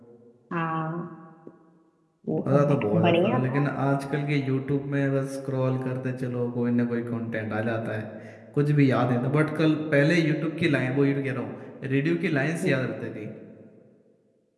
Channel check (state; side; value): identical; both; correlation 1.00